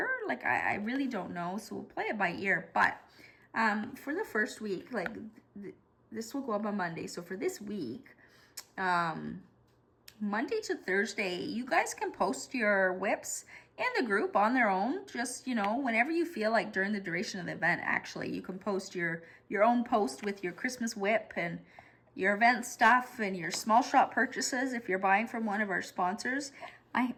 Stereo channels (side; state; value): both; identical; correlation 1.00